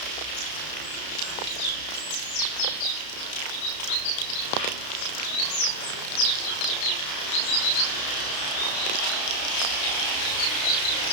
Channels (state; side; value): late; right; 32 ms